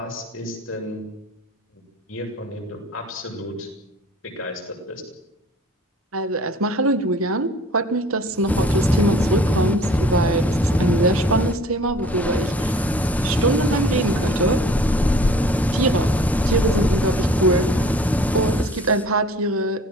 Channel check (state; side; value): normal; both; correlation 0.50